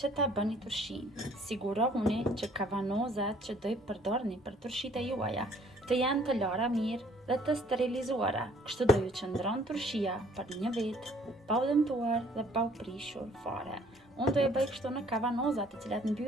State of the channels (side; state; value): both; normal; correlation 0.59